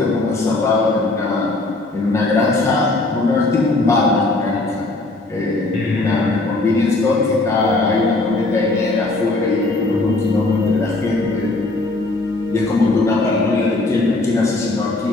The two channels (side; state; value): right; quieter; 3.0 dB